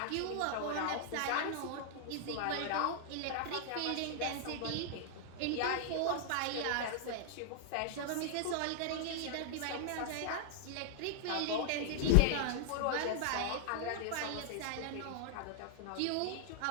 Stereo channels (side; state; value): both; different; correlation 0.00